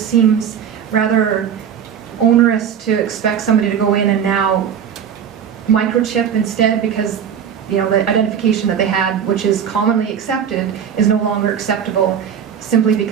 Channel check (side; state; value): left; quieter; 8.2 dB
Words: seems rather onerous to expect somebody to go in and now microchip instead, because you know the identification that they had, which is commonly accepted, is no longer acceptable simply